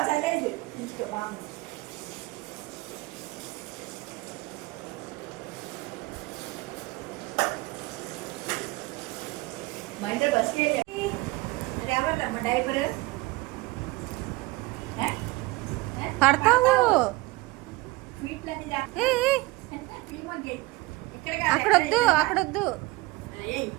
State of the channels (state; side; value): quieter; left; 21.9 dB